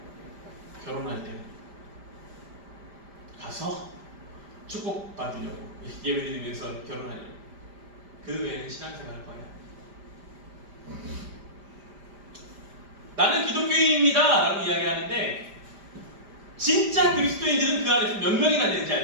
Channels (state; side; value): late; left; 5.0 ms